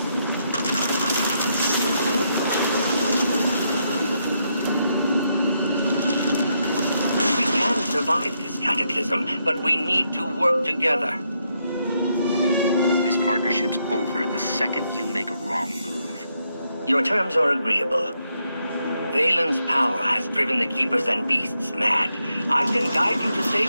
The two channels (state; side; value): inverted; both; correlation -0.79